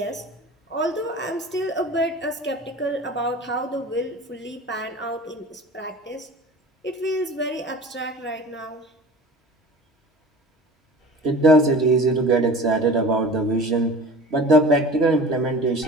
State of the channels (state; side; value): normal; both; correlation 0.39